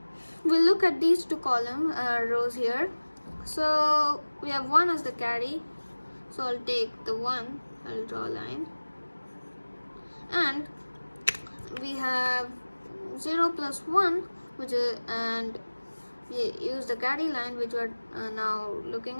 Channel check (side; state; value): both; inverted; correlation -1.00